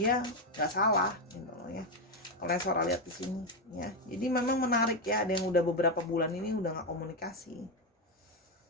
nggak salah gitu loh ya. Kalau yang Sora lihat di sini ya, jadi memang menarik ya. Ada yang udah beberapa bulan ini udah nggak komunikasi.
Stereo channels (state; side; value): normal; both; correlation 0.07